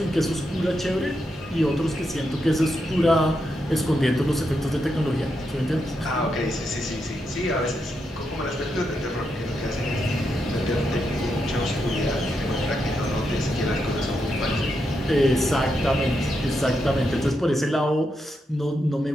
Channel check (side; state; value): both; normal; correlation 0.83